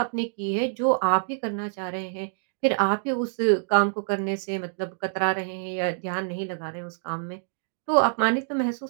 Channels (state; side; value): silent; left; digital silence